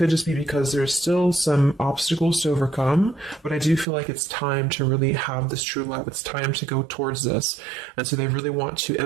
just be because there's still some obstacles to overcome. But I do feel like it's time to really have this true love. It's time to go towards this. And so they really want to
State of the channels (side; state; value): left; drops out; at 3.9 s